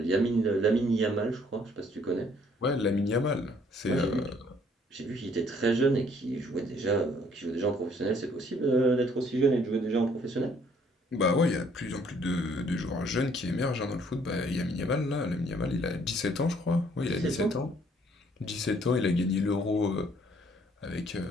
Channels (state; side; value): normal; both; correlation 0.63